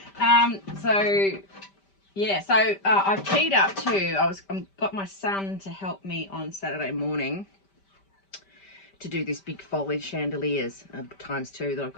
I've teed up too. I've got my son to help me on Saturday morning to do this big foliage chandeliers ×2 that I've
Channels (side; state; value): right; late; 5.1 ms